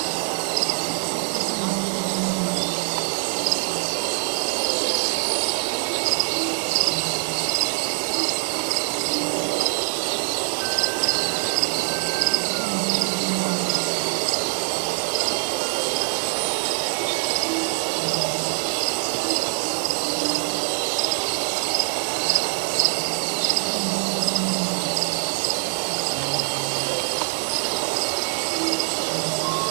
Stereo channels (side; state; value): left; silent; digital silence